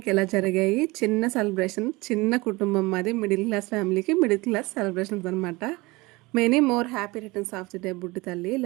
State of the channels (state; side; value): quieter; left; 22.8 dB